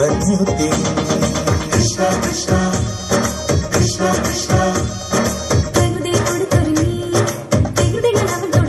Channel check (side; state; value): both; identical; correlation 1.00